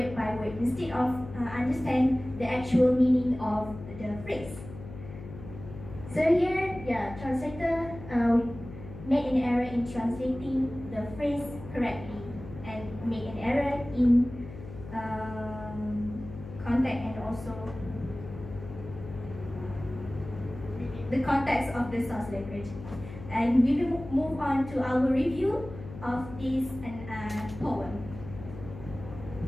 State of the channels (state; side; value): noise; left; hum, 13 dB below the sound